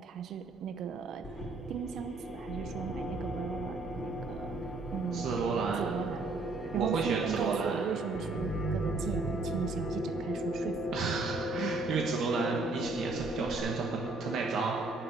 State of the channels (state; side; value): quieter; left; 3.3 dB